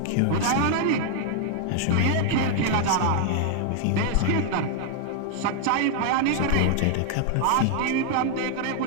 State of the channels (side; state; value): both; different; correlation 0.00